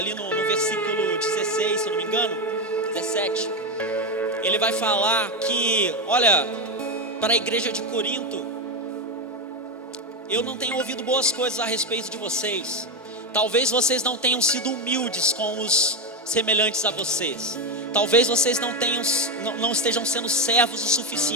no versículo 16, se eu não me engano, 17, ele vai falar que, olha, para a igreja de Corinto, eu não tenho ouvido boas coisas a respeito de vocês. Talvez vocês não tenham sido humildes com os semelhantes a vocês. Talvez vocês não estejam sendo servos o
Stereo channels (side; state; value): both; normal; correlation 0.10